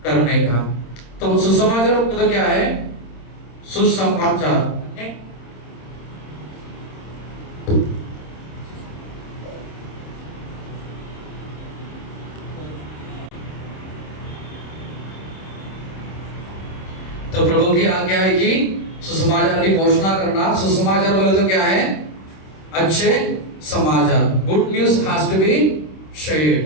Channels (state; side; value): late; right; 26 ms